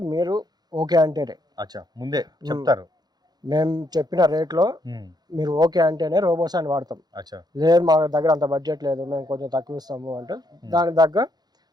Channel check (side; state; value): left; late; 0.19 ms